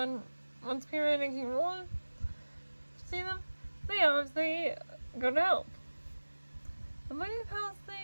once Pyramid and King Roland see them. They obviously go to help. The Waiting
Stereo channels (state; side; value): inverted; both; correlation -1.00